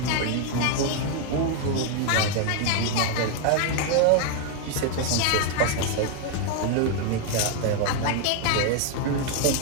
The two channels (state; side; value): different; both; correlation 0.01